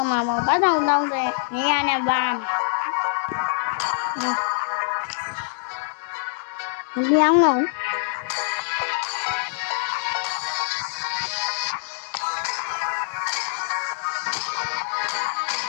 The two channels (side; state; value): right; silent; digital silence